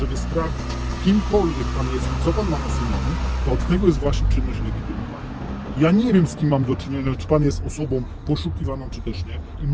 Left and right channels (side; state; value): both; identical; correlation 1.00